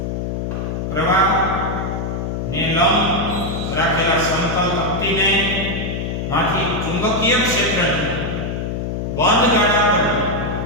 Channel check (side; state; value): left; noise; hum, 3 dB below the sound